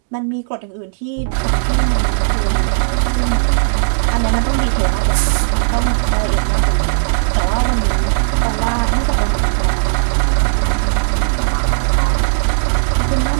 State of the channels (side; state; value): left; silent; digital silence